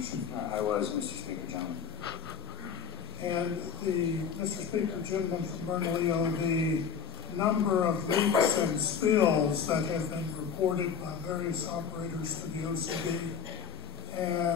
I was, Mr. Speaker, gentlemen. And Mr. Speaker, gentleman from Bernalillo, the number of leaks and spills that have been reported by various operators to the OCD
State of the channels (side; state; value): right; quieter; 6.8 dB